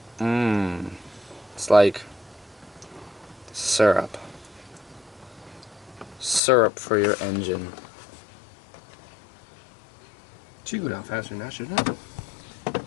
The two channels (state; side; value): drops out; right; at 6.4 s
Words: Mmm. It's like syrup. Syrup for your engine. It should go down faster than that, shouldn't it?